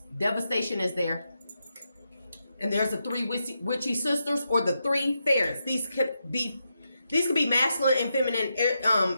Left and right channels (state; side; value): inverted; both; correlation -0.85